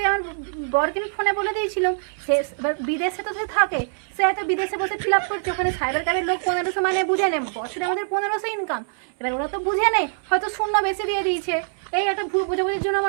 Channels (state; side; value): silent; left; 63 dB below the other